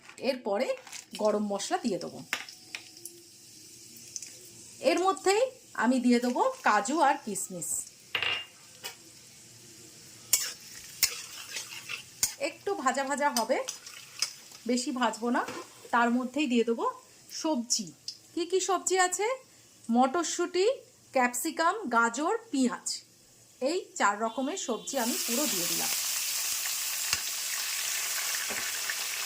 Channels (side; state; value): both; identical; correlation 1.00